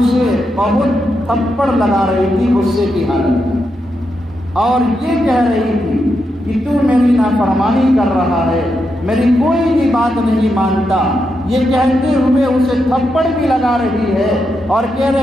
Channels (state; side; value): normal; both; correlation 0.84